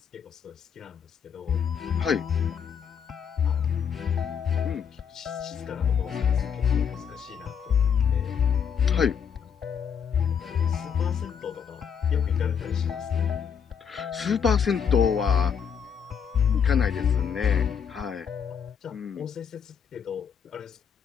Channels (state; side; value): quieter; right; 7.3 dB